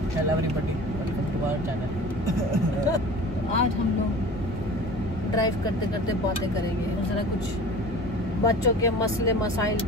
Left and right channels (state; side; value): normal; both; correlation 0.39